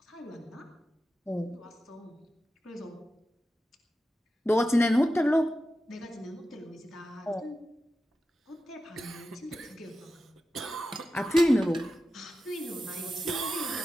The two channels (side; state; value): both; normal; correlation 0.92